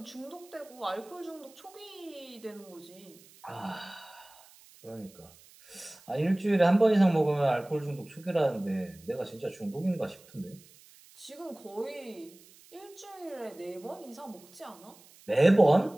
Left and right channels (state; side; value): noise; right; hiss, 24 dB below the sound